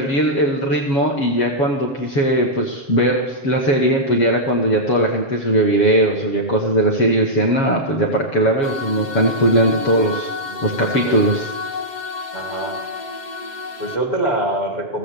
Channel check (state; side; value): late; right; 7.5 ms